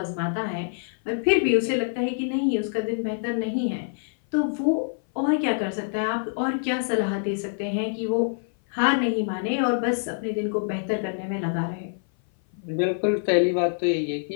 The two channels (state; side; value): silent; right; 57 dB below the other